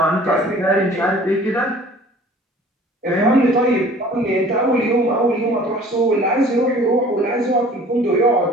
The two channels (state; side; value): normal; both; correlation 0.49